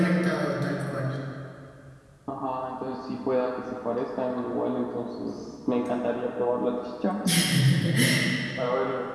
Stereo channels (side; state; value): both; identical; correlation 1.00